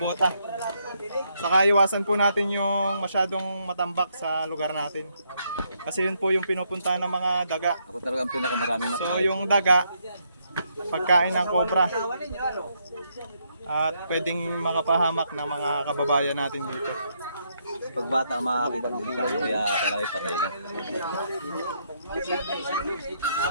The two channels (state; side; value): inverted; both; correlation -0.75